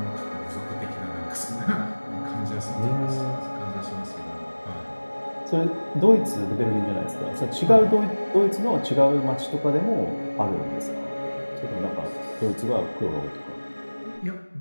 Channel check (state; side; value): inverted; both; correlation -1.00